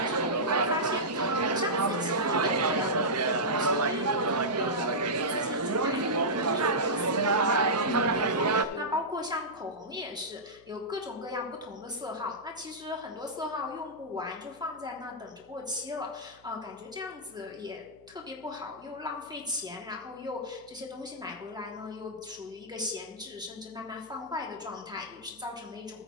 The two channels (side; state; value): left; noise; hum, 27 dB below the sound